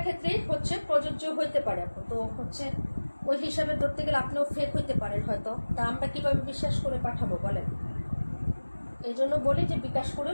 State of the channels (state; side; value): inverted; both; correlation -1.00